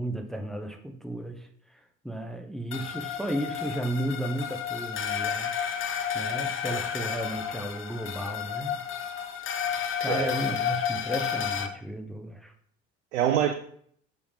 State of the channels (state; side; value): normal; both; correlation 0.36